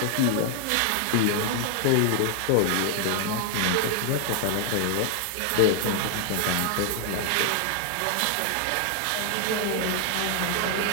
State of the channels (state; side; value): different; both; correlation 0.00